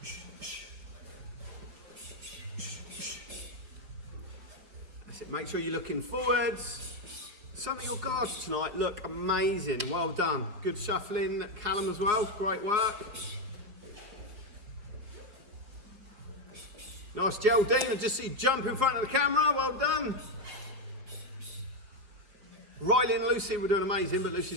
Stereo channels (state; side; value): late; left; 5.0 ms